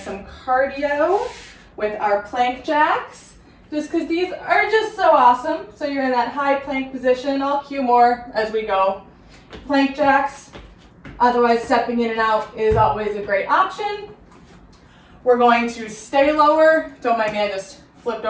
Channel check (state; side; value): identical; both; correlation 1.00